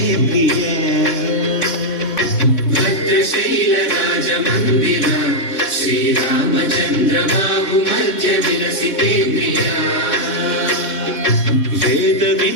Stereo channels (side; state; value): right; late; 3.6 ms